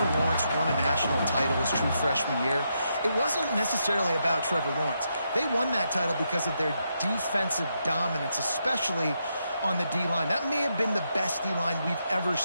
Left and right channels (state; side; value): inverted; both; correlation -0.81